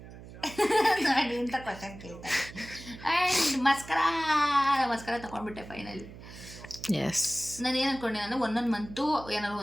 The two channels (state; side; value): noise; right; hum, 16 dB below the sound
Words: ನೋಡಿ ಅಂತ ಕ್ವಶನ್ ಕೇಳ್ತಾರೆ. ಆ್ಯಂಡ್ ಮಸ್ಕರ ತಗೊಂಡ್ಬಿಟ್ಟೆ ಫೈನಲಿ. ಎಸ್, ನಾನು ಏನು ಅನ್ಕೊಂಡೆ ಅಂದರೆ ಒಂದೊಂದು ಮಂತು ಏನಾದ್ರು